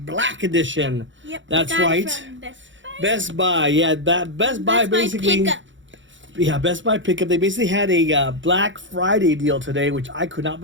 Edition. Yep. That's right. Best Buy. Yeah, that Best Buy basically. Pickup. Yeah, Best Buy pickup. They basically had a Black Friday deal today, which I could not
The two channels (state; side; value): late; left; 0.55 ms